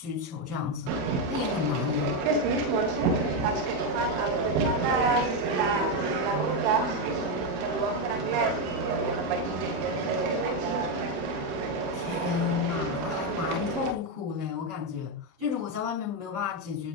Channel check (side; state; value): left; late; 28 ms